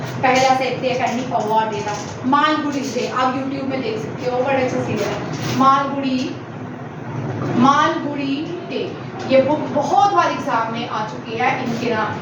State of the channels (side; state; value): both; identical; correlation 1.00